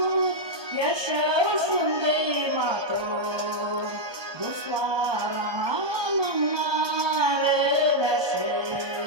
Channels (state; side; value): late; left; 1.2 ms